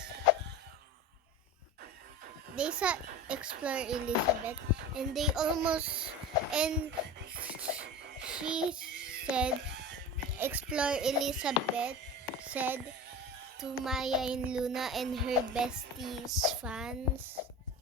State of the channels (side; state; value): both; normal; correlation 0.31